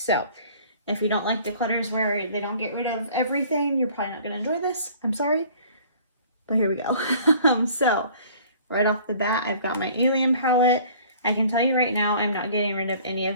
if you don't like declutters where they don't get rid of everything, you're probably not going to enjoy this. I'm sorry, but here we go. So right off the bat, I've got my Alien palette. I can tell you right now, I'm not getting rid of any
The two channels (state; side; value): inverted; both; correlation -0.52